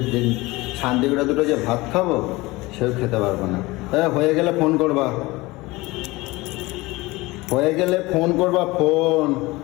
যে শান্তি করে দুটো যে ভাত খাবো সেও খেতে পারবো না হ্যাঁ হয়ে গেলে ফোন করবা হয়ে গেলে ফোন করবা ফোন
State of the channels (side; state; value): right; quieter; 21.4 dB